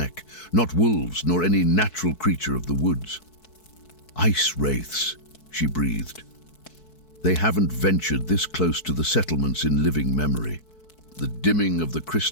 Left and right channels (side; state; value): right; late; 4.6 ms